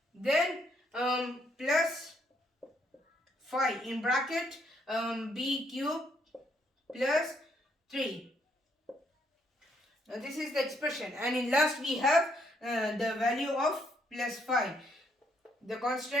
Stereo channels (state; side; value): normal; both; correlation 0.72